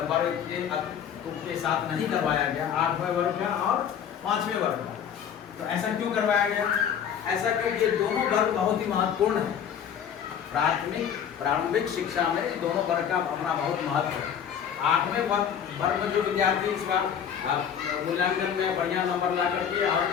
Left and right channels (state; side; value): quieter; right; 8.4 dB